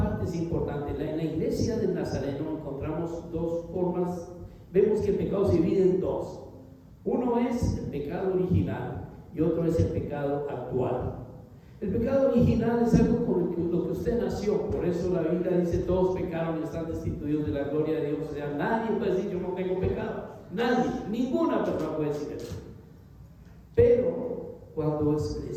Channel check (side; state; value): both; identical; correlation 1.00